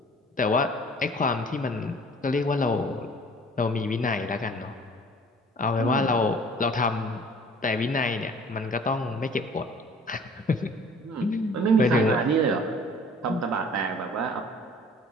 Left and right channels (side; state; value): both; normal; correlation 0.50